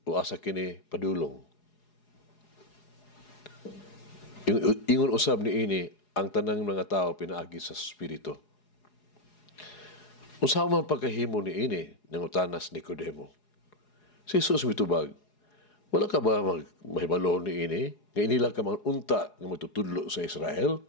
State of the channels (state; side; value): late; right; 4.8 ms